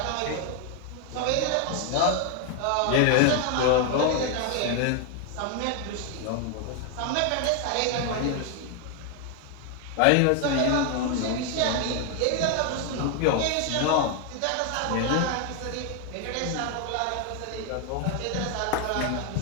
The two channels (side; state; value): both; different; correlation 0.01